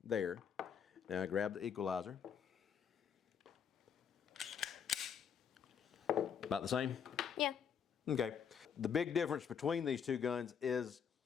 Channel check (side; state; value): right; quieter; 7.4 dB